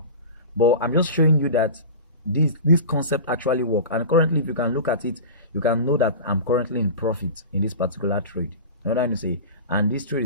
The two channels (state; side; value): inverted; both; correlation -0.32